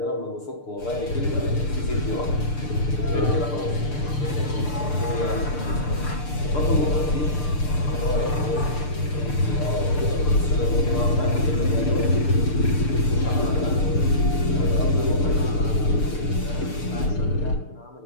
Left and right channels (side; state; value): right; late; 6.7 ms